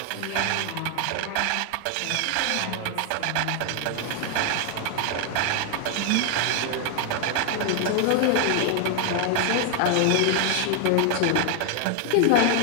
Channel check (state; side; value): different; both; correlation 0.00